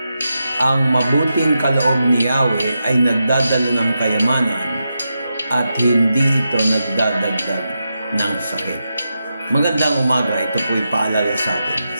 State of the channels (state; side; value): inverted; both; correlation -0.87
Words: ang mabuting kaloob ni Yahweh ay nagdadala ng kayamanan at hindi ito nagdadagdag ng sakit. Magandang umaga, ito po'y paalala sa atin.